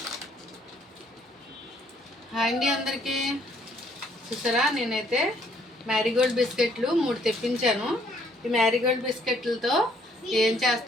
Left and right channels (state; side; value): normal; both; correlation 0.65